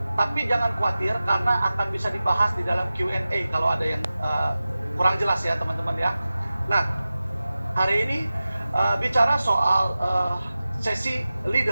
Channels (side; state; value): both; inverted; correlation -0.95